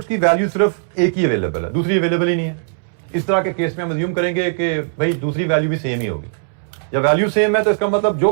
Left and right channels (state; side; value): silent; left; 67 dB below the other